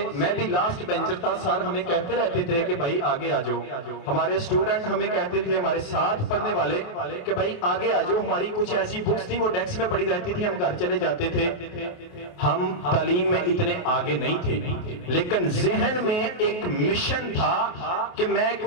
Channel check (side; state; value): right; late; 28 ms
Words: میں بھی لاسٹ بینچر تھا، سر ہمیں کہتے رہتے تھے کہ بھائی آگے آ جاؤ. ہمارے اسٹوڈنٹ ہمیں کہتے تھے، ہمارے ساتھ پڑھنے والے کہ بھائی آگے آ جاؤ. ہماری کچھ ایسی بکس تھی وہ ڈیسک میں پڑی رہتی تھی، ہم گھر چلے جاتے تھے. ہم تعلیم میں اتنے آگے نہیں تھے لیکن ذہن میں ایک مشن تھا کہ میں